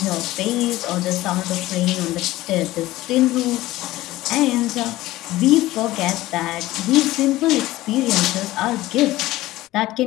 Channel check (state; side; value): quieter; right; 17.1 dB